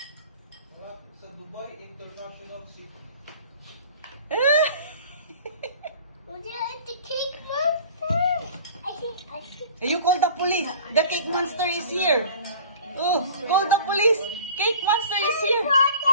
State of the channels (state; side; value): inverted; both; correlation -0.44